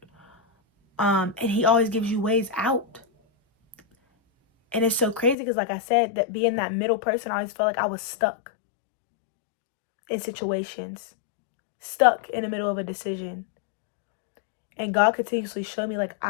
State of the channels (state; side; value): drops out; right; at 5.4 s